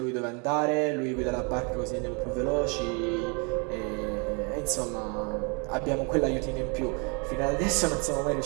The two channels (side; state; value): left; quieter; 34.1 dB